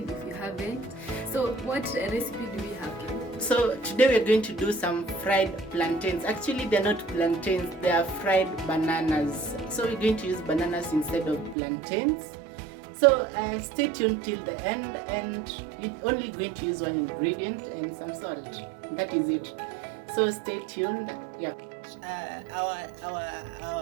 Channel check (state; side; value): drops out; left; at 11.6 s